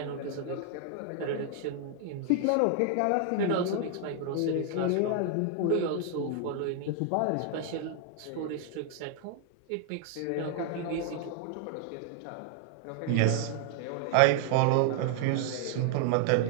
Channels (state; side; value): different; both; correlation 0.00